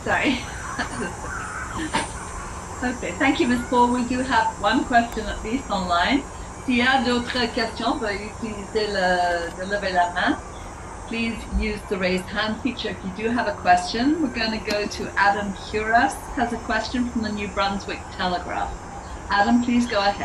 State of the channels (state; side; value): identical; both; correlation 1.00